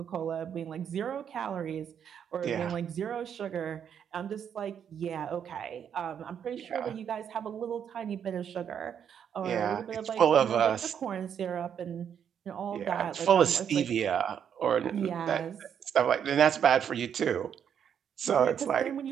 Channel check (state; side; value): quieter; left; 8.3 dB